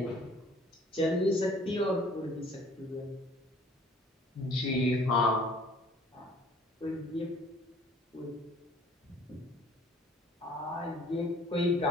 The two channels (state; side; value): normal; both; correlation 0.54